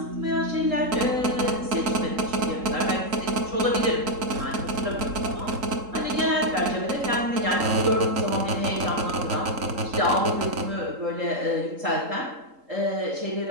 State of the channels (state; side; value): late; left; 3.8 ms